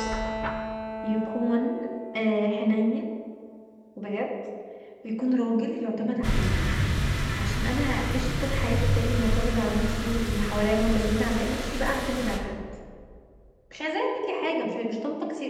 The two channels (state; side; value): identical; both; correlation 1.00